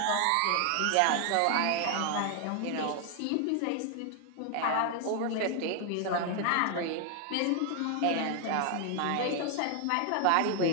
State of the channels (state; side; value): different; both; correlation 0.00